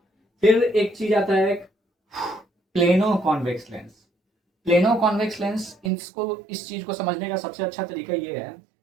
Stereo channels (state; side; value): drops out; left; at 5.9 s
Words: फिर एक चीज़ आता है plano convex lens. Plano convex lens, इस चीज़ को समझने का सबसे अच्छा तरीका ये है